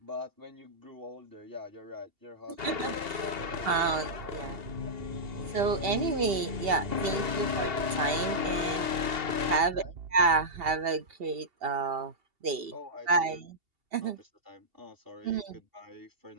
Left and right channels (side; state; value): left; late; 2.8 ms